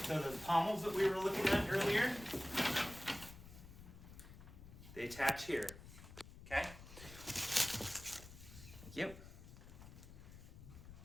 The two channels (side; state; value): left; noise; rumble, 16 dB below the sound